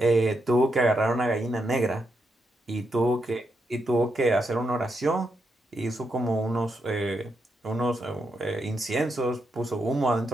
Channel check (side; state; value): both; normal; correlation 0.82